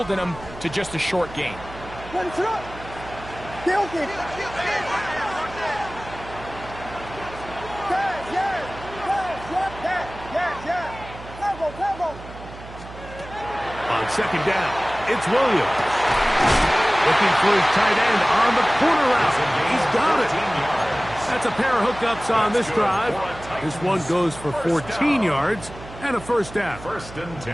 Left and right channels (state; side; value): noise; right; hum, 15 dB below the sound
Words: them to just a short gain. What is up? Guilty. On 2nd down, it's Williams. Looking for his tight end on the corner route. He's got it. That's a pair of hookups on this drive. This one goes for 14 yards and a 1st down. 1st and 10